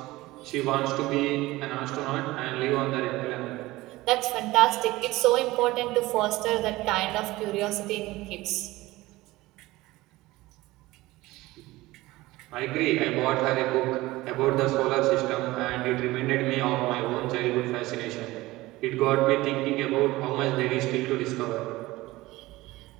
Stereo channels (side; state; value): left; quieter; 19.0 dB